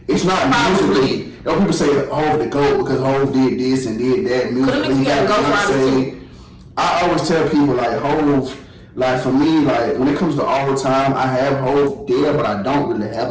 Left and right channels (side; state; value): both; identical; correlation 1.00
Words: It's not musically. You know, people say Hov the GOAT because Hov did this and did that musically. He got Beyonce. I always tell people like Hov, like for me, like when it comes to all the time, I have Hov there, but I don't really have